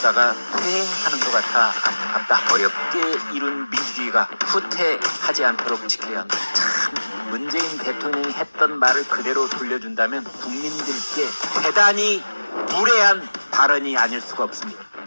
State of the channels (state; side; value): inverted; both; correlation -1.00